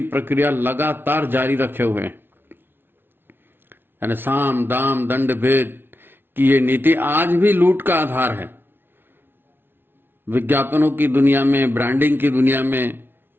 प्रक्रिया लगातार जारी रखे हुए हैं। यानी साम दाम दंड भेद की ये नीति आज भी लूट का आधार है। विज्ञापनों की दुनिया में, ब्रांडिंग की दुनिया में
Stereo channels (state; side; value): late; left; 0.10 ms